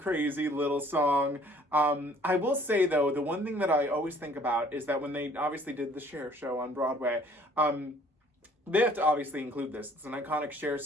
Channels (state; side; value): normal; both; correlation 0.57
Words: little song. I will say, though, the one thing that I always think about is that when they obviously did the Cher show on Broadway, they have to obviously include this. It's an iconic Cher